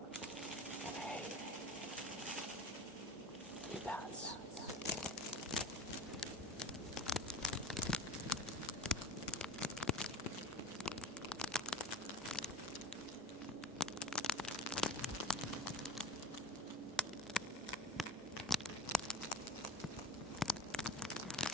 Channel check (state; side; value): normal; both; correlation 0.35